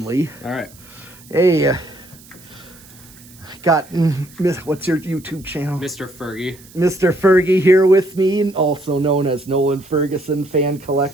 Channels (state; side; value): noise; right; hiss, 23 dB below the sound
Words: All right. Hey, got, what's your YouTube channel? Mr. Fergie. Mr. Fergie here with me, also known as Nolan Ferguson, fan